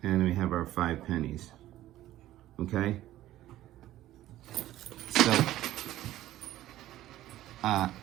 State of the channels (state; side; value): quieter; left; 14.3 dB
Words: and we have our 5 pennies, okay? So